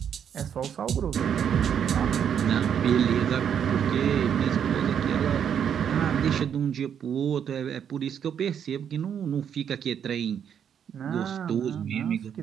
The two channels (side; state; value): left; quieter; 8.4 dB